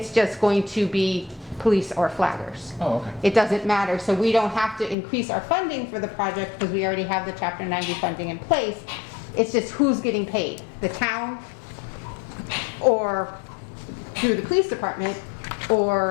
just going to be police or flaggers. Oh, okay. It doesn't matter. So we don't have to increase our funding for the project because we already have the Chapter 90 funding in place. It's just who's getting paid, the town or through the police department,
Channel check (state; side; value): drops out; right; at 5.0 s